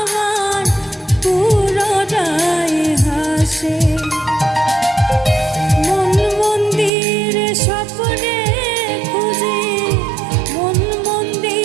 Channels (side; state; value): left; drops out; at 6.9 s